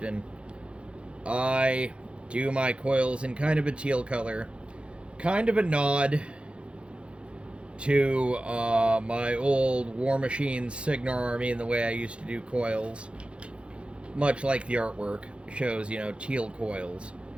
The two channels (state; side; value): late; left; 0.058 ms